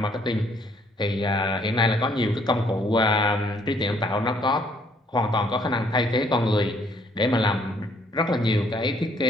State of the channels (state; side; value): normal; both; correlation 0.65